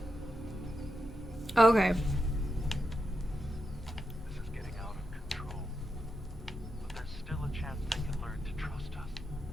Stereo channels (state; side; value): normal; both; correlation 0.86